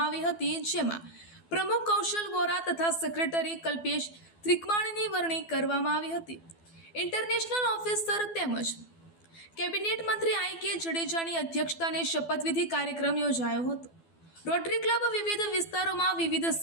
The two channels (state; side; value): late; right; 12 ms